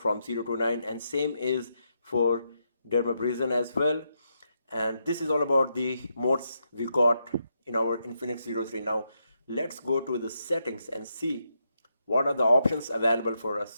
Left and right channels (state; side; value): inverted; both; correlation -0.82